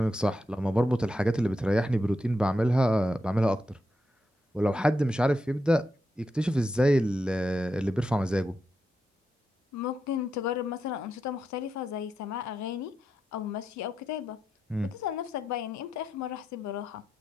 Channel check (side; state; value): both; normal; correlation 0.85